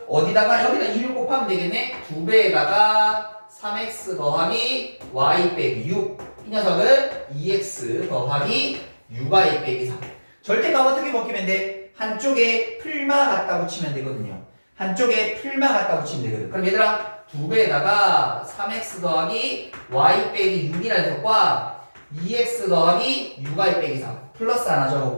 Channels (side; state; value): both; inverted; correlation -1.00